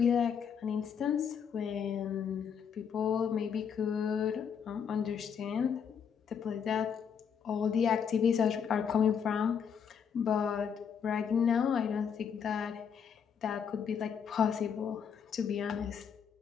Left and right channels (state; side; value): quieter; right; 7.2 dB